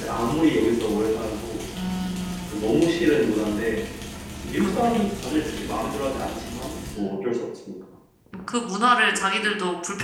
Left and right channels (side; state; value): both; identical; correlation 1.00